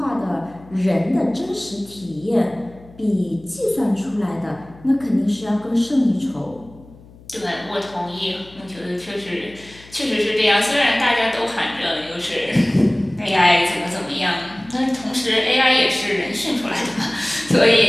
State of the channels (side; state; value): left; noise; hum, 23 dB below the sound